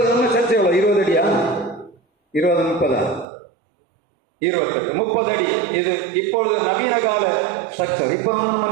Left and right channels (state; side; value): drops out; left; at 3.2 s